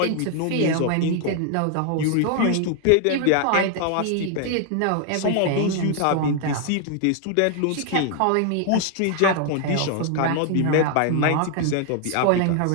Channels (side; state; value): both; different; correlation 0.00